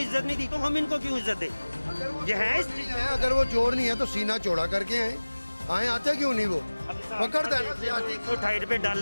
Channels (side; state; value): both; inverted; correlation -1.00